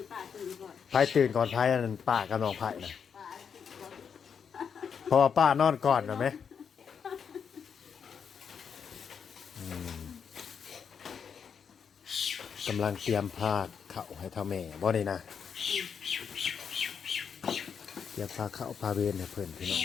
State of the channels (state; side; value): quieter; right; 6.9 dB